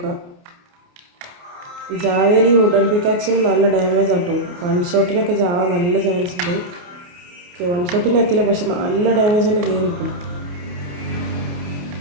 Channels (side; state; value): left; late; 28 ms